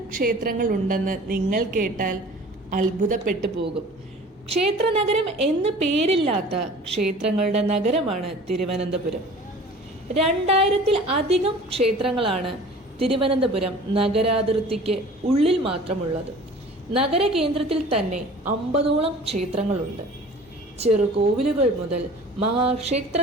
ക്ഷേത്രങ്ങൾ ഉണ്ടെന്ന് നിങ്ങൾ കേട്ടാൽ അത്ഭുതപ്പെട്ടു പോകും. ക്ഷേത്രനഗരം എന്ന് പേരില്ലാത്ത ക്ഷേത്രങ്ങളുടെ നഗരമാണ് തിരുവനന്തപുരം. 2000-ൽ-അധികം ക്ഷേത്രങ്ങളാണ് തിരുവനന്തപുരം നഗരാതിർത്തിക്ക് ഉള്ളിൽ മാത്രമുള്ളത്. നഗരകേന്ദ്രത്തിൽ തന്നെ 50ഓളം ക്ഷേത്രങ്ങളുണ്ട്. ചെറുകോവിലുകൾ മുതൽ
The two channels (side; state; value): both; normal; correlation 0.44